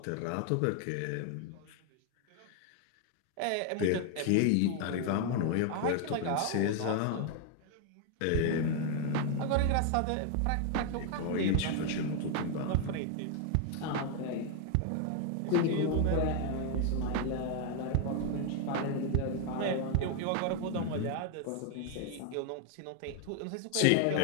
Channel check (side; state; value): both; different; correlation 0.00